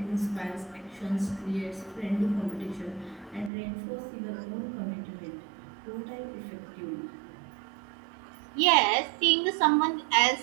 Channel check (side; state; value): left; drops out; at 3.5 s